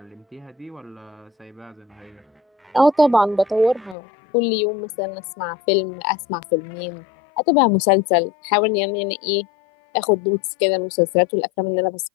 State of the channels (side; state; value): right; drops out; at 4.0 s